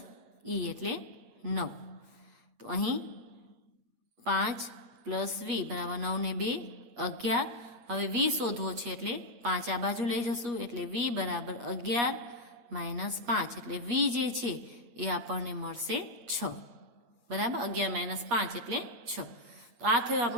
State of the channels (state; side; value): late; left; 8.8 ms